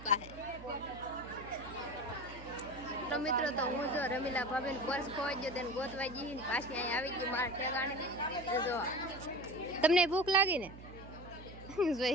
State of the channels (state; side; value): noise; right; hum, 15 dB below the sound